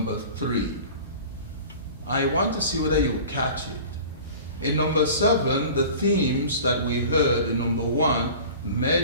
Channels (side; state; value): both; inverted; correlation -0.41